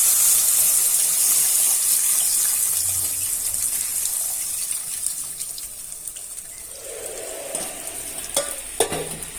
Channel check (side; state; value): both; identical; correlation 1.00